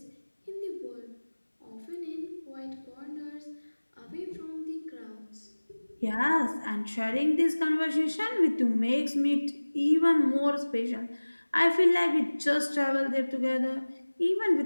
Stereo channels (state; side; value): inverted; both; correlation -1.00